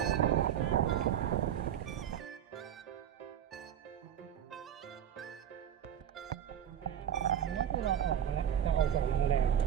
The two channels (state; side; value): quieter; left; 9.5 dB